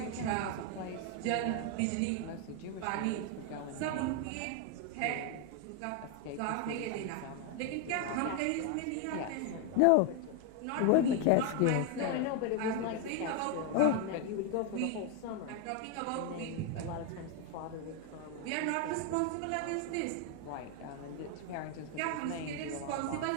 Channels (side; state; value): both; different; correlation 0.01